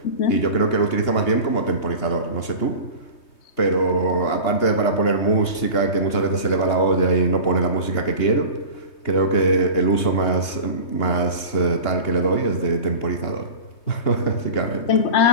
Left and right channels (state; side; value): late; right; 2.9 ms